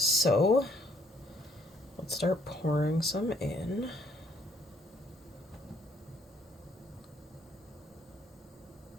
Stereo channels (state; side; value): normal; both; correlation 0.66